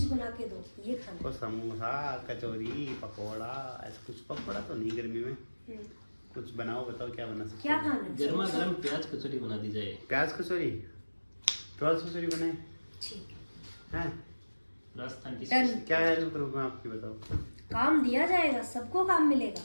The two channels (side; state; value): both; inverted; correlation -1.00